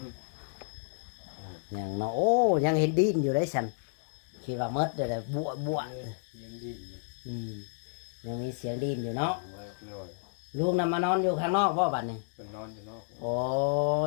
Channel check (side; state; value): right; silent; digital silence